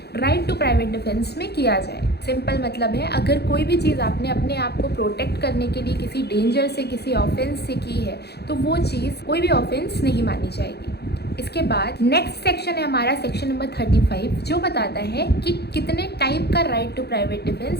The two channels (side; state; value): right; late; 0.48 ms